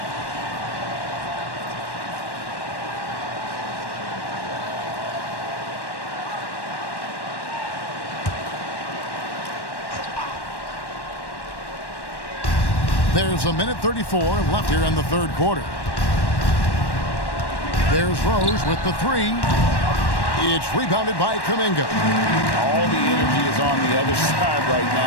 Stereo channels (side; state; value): right; late; 1.1 ms